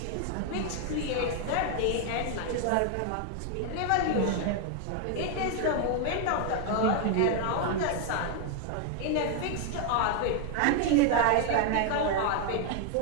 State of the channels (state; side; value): different; both; correlation 0.00